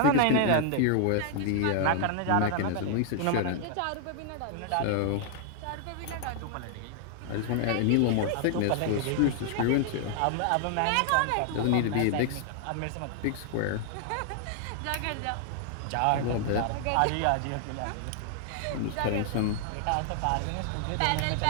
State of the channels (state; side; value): different; both; correlation 0.00